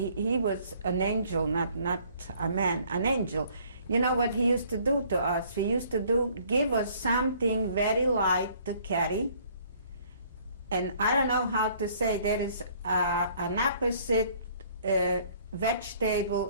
an angel, not a man, an angel. You know what he used to do to us? He used to give us something very light to carry. And I don't know how to say, there is an opposite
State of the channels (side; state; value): both; inverted; correlation -0.59